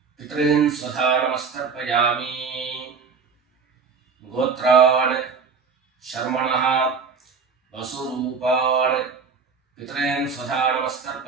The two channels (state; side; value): quieter; left; 5.4 dB